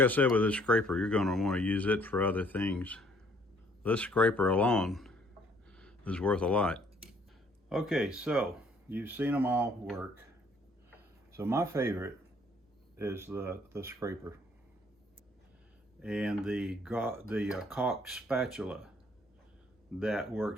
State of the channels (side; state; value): both; normal; correlation 0.62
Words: said with this scraper, you're going to want to use it for other things. This scraper alone is worth a lot. Okay, so you've seen them all work. So my favorite is the scraper and the caulk spatula. That